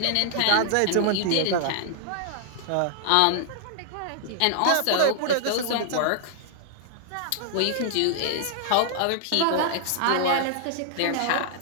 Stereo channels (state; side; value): different; both; correlation -0.01